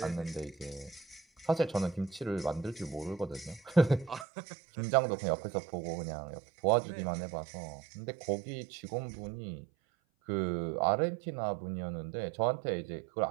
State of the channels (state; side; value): drops out; left; at 4.2 s